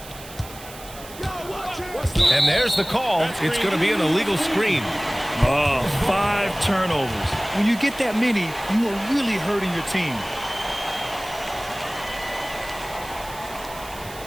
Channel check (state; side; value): noise; right; hiss, 16 dB below the sound